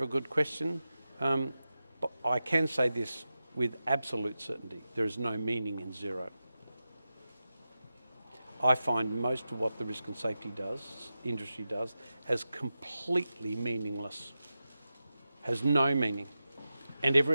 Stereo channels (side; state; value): both; inverted; correlation -0.92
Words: good question. But I can say this with absolute certainty. There is no meaning in zero. I find most of what the risk and safety industry does, as completely meaningless. Has no meaning. And